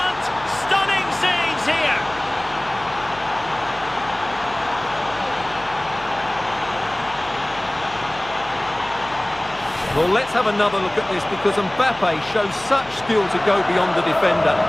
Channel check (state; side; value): noise; left; hum, 21 dB below the sound